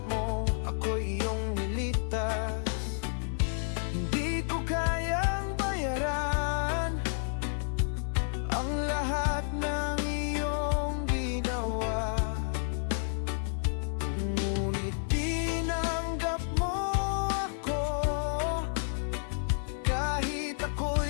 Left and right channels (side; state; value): right; silent; digital silence